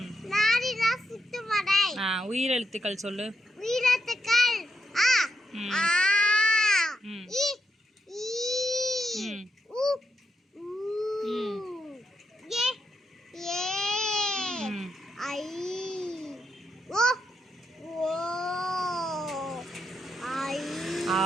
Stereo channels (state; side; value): normal; both; correlation 0.82